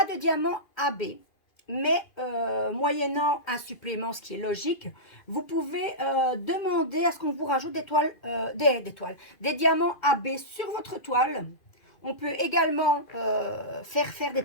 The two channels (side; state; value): right; late; 2.5 ms